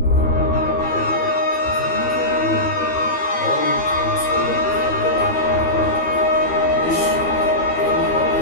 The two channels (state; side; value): late; right; 12 ms